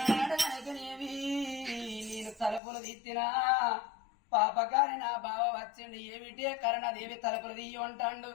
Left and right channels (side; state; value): right; drops out; at 2.6 s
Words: నేను తలుపులు తీర్చినా పాపకారి నా బావ వచ్చిండు ఏమిటి కరణదేవి తలుపులు తీయ అంటాడు